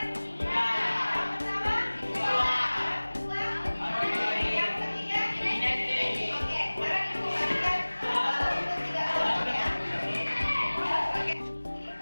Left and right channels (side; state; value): both; inverted; correlation -1.00